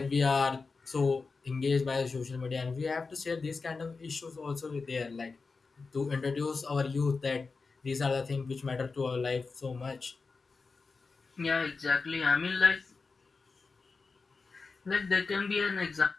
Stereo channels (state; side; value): quieter; right; 4.3 dB